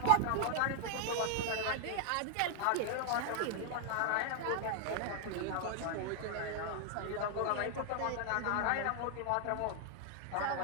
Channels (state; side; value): different; both; correlation 0.00